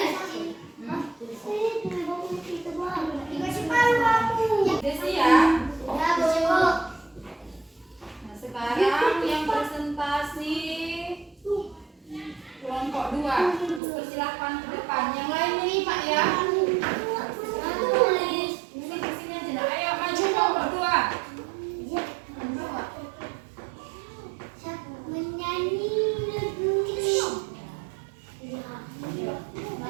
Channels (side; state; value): left; drops out; at 13.8 s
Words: Udah siap? Nah, sekarang yang presentasi